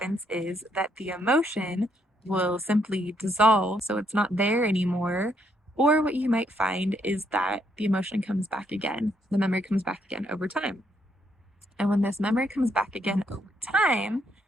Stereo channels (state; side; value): normal; both; correlation 0.74